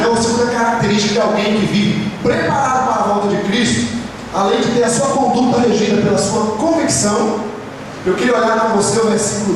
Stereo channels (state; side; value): identical; both; correlation 1.00